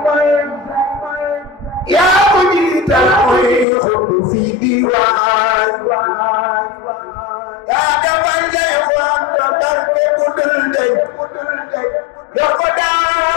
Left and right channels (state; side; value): drops out; right; at 3.7 s